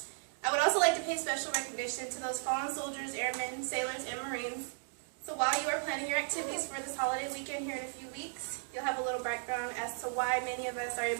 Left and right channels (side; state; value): left; silent; digital silence